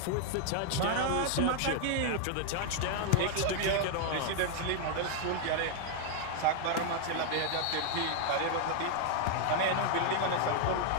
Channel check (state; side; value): different; both; correlation 0.00